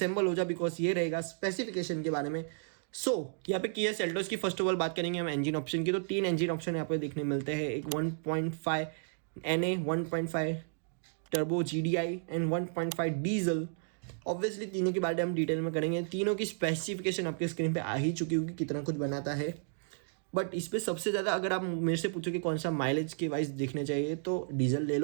हो जा बिकॉज ये रहेगा स्पेसिफिकेशन के बारे में। यहाँ पे किया सेल्टॉस की फर्स्ट ऑफ ऑल बात करेंगे हम इंजन ऑप्शन की, तो 3 इंजन ऑप्शन यहाँ पे देखने मिलते हैं। एक 1.5 NA, 1.5 turbo GDI and 1.5 diesel. Obviously तीनों के बारे में हम डिटेल में करेंगे। तीनों की स्पेसिफिकेशन आपके स्क्रीन पे आ ही चुकी होगी कितना कुछ बनाता है, बट इस पर सबसे ज़्यादा अगर आप मेरे से पूछो कि कौन सा माइलेज के वाइज देखने चाहिए तो डीजल ले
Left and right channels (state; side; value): silent; left; digital silence